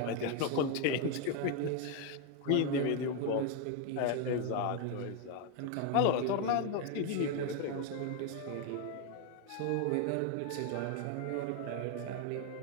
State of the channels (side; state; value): both; different; correlation 0.01